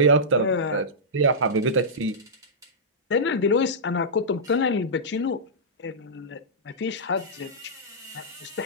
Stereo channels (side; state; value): both; normal; correlation -0.14